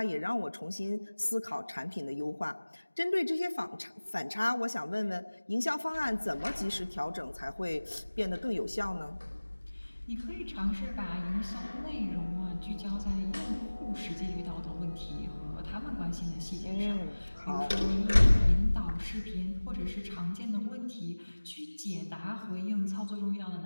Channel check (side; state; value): both; inverted; correlation -1.00